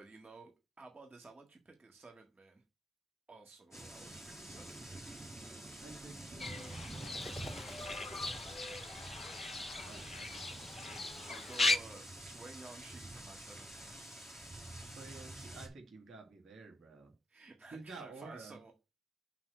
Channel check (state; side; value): normal; both; correlation 0.81